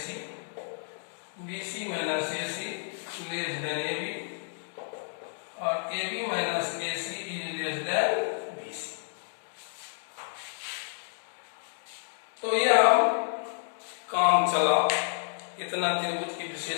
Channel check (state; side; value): silent; right; digital silence